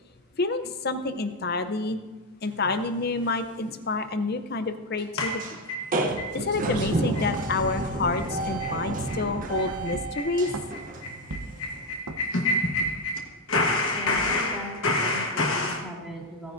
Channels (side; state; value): both; normal; correlation 0.08